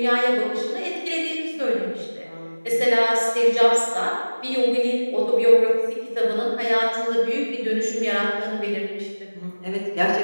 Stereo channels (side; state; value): both; inverted; correlation -1.00